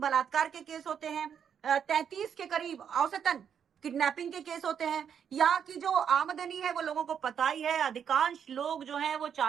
के केस होते हैं, 33 के करीब औसतन किडनैपिंग के केस होते हैं। यहाँ की जो आमदनी है वो लोगों को पता ही है, अधिकांश लोग जो हैं वो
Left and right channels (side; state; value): left; quieter; 7.9 dB